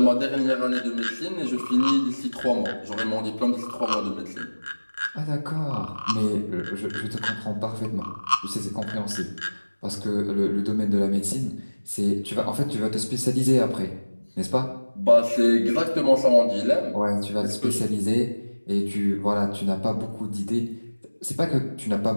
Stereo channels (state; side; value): inverted; both; correlation -1.00